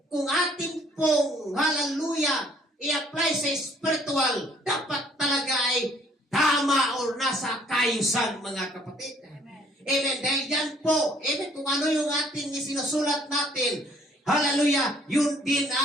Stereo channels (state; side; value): normal; both; correlation 0.61